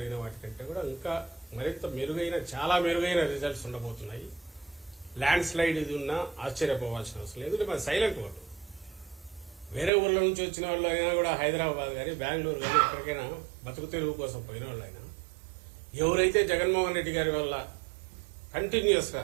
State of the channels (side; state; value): left; drops out; at 9.9 s